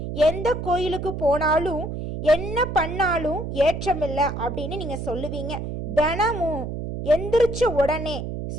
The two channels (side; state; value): right; noise; hum, 5 dB below the sound